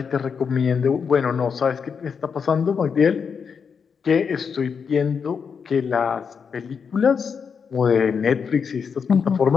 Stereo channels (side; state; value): right; quieter; 6.2 dB